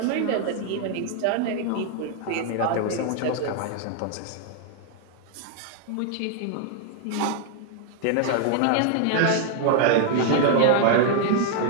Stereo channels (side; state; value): both; different; correlation 0.00